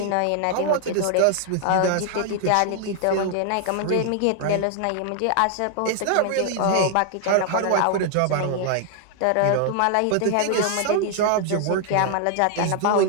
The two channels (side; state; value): both; different; correlation 0.00